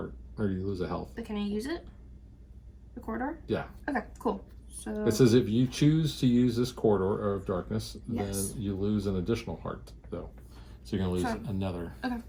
or you lose a health. But can I use it? The corridor? Yeah. Okay, cool. So It says if you choose to use this Corridor of Darkness, Yes. then you lose an additional heart, though. So you're gonna lose Fine. another. okay,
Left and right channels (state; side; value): identical; both; correlation 1.00